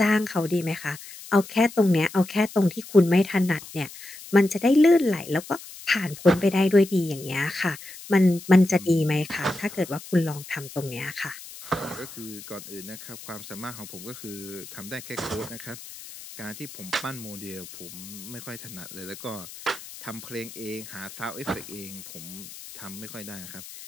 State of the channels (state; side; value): noise; left; hiss, 15 dB below the sound